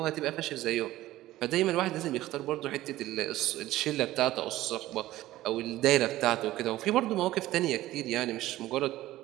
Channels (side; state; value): left; quieter; 15.8 dB